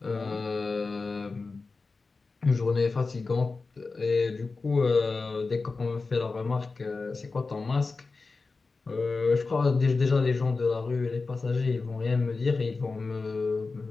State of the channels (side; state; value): right; quieter; 4.0 dB